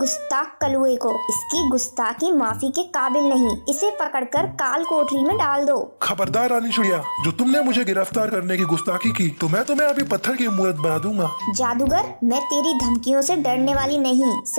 कलुए को। इसकी गुस्ताखी माफी के काबिल नहीं। इसे पकड़कर काल कोठरी में डाल दो। खबरदार रानी चिड़िया, जो तुमने मुझे गिरफ्तार करने की गुस्ताखी की तो मैं तुम्हें अभी पत्थर की मूर्त बना दूंगा। जादूगर, मैं तेरी धमकियों से डरने वाली नहीं।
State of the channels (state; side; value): inverted; both; correlation -1.00